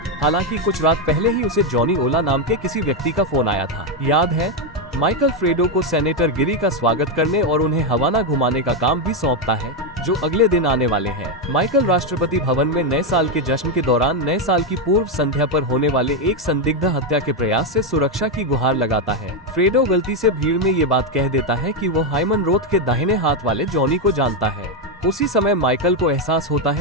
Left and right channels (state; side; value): normal; both; correlation 0.05